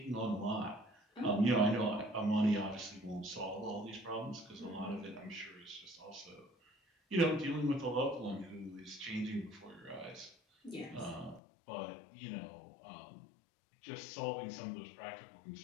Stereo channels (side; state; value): right; drops out; at 11.4 s